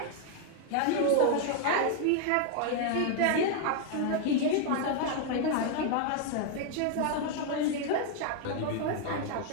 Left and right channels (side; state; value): both; different; correlation 0.00